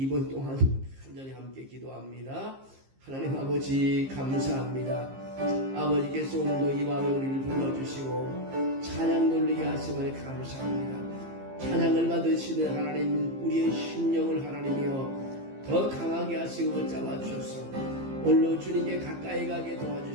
동안 간절히 함께 기도합니다. 하나님 아버지 감사합니다. 아버지께서 오늘도 이 밤에 우리를 불러주시고 찬양 돌리게 하심을 감사합니다. 찬양을 받으시는 하나님 우리의 심령을 하나님이여 더 강하게 하시고 붙잡아 주셔서 오늘로 주님께 가까이 가게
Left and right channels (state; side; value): late; left; 15 ms